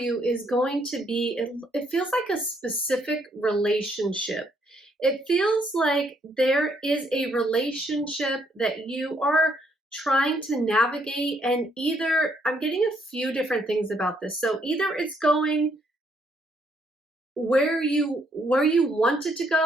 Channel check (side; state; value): both; normal; correlation 0.71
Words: is going to be, it feels like a specific relationship. It feels like there is a relationship that you are trying to navigate, and either, I'm getting a few different things about this. So either it's going where you want it to